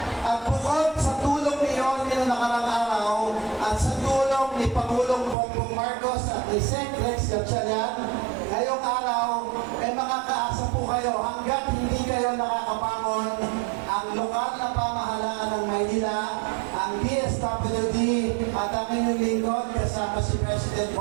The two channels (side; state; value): left; drops out; at 5.4 s